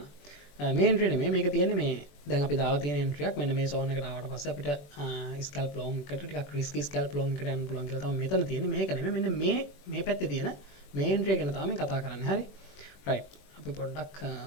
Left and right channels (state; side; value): late; right; 21 ms